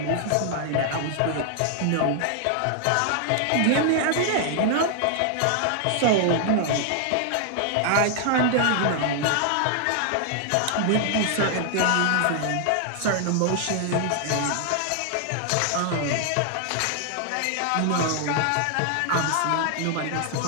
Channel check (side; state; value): both; different; correlation 0.00